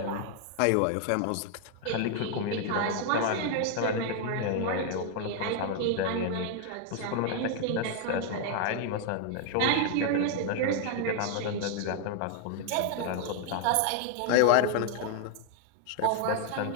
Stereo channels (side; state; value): both; different; correlation 0.00